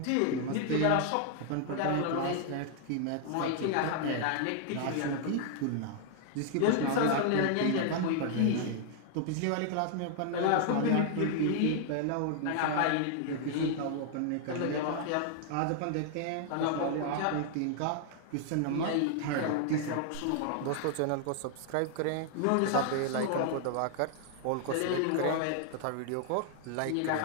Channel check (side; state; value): both; different; correlation 0.00